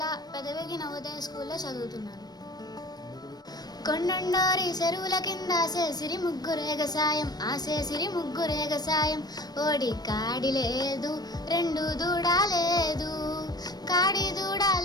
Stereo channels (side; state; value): right; late; 0.19 ms